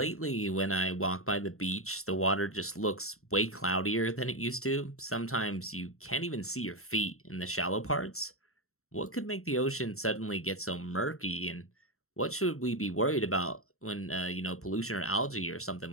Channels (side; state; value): right; late; 0.63 ms